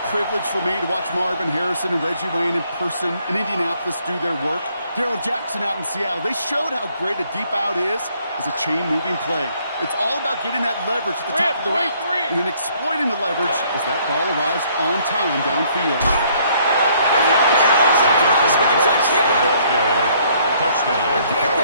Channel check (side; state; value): both; inverted; correlation -0.64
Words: privilege for me to watch Marvin Harrison and Reggie Wayne in person in Indianapolis do their work. Darrell Jackson out in Seattle. They showed how great a deep out is as a chain-moving play. It's all about getting that leverage at the top of the route and then exploiting the leverage as that ball arrives on time downfield. Barrels across for the touchdown. Touchdown. The